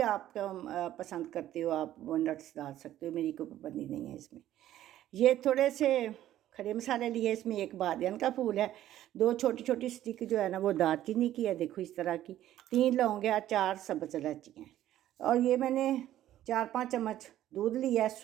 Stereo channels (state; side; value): quieter; left; 12.9 dB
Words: आप पसंद करते हो आप वो नट्स डाल सकते हो, मेरी कोई पाबंदी नहीं है इसमें। ये थोड़े से खड़े मसाले लिए, इसमें एक बादियान का फूल है, 2 छोटी छोटी स्टिक जो है ना वो दालचीनी की है, देखो इस तरह की, 3 लौंग है, 4 सब्ज़ इलायची हैं। और ये मैंने 4-5 चम्मच दूध लिया है,